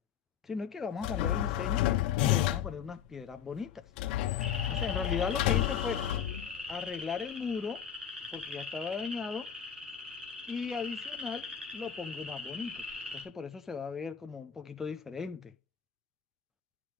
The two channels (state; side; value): quieter; right; 8.3 dB